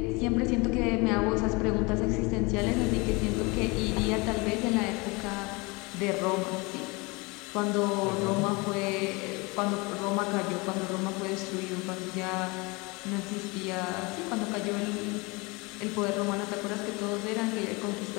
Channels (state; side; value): quieter; right; 26.6 dB